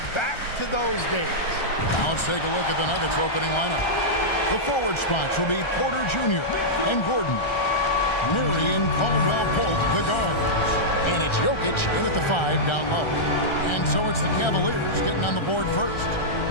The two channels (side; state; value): right; late; 1.3 ms